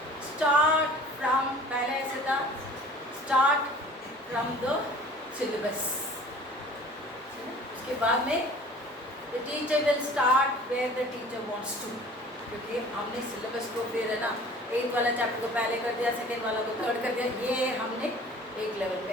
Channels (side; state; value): both; normal; correlation 0.46